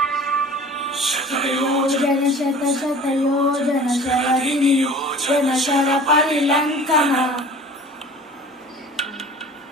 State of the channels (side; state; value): both; normal; correlation 0.44